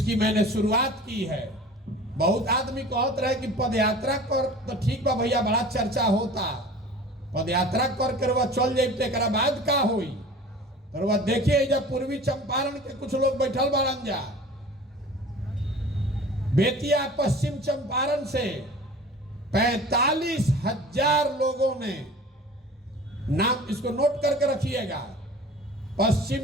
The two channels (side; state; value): both; normal; correlation 0.41